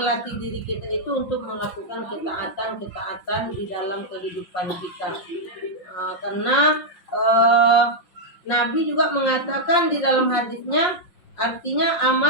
diri kita itu untuk melakukan ketaatan di dalam kehidupan kita. Karena Nabi juga mengatakan di dalam hadisnya, artinya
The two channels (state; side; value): late; right; 5.7 ms